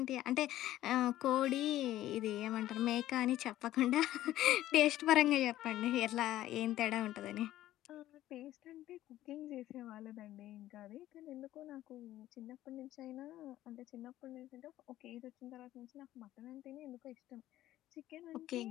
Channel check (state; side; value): quieter; right; 14.2 dB